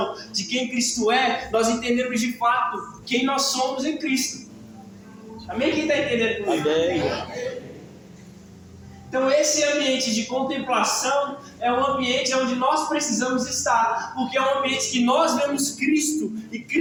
de quem Cristo é, nós entendemos de fato quem nós somos em Cristo. Amém? Quem está entendendo comigo? Amém. Então, esse ambiente de contemplação é um ambiente onde nós precisamos estar, porque é um ambiente que nós vemos Cristo e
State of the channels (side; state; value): both; identical; correlation 1.00